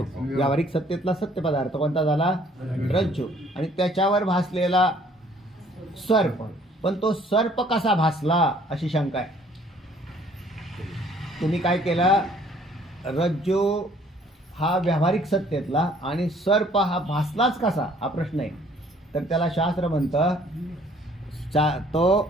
व्यावहारिक सत्तेतला सत्य पदार्थ कोणता झाला? रज्जू. आणि त्याच्यावर भासलेला सर्प. पण तो सर्प कसा भासला अशी शंका आहे. तुम्ही काय केलं? रज्जू हा व्यावहारिक सत्तेतला आणि सर्प हा भासलाच कसा हा प्रश्न आहे. तर त्याला शास्त्र म्हणतं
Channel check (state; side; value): normal; both; correlation 0.59